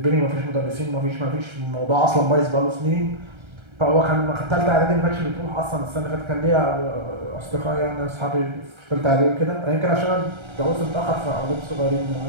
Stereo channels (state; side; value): late; left; 1.3 ms